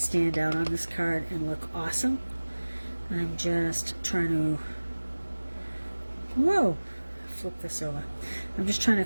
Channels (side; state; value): both; inverted; correlation -1.00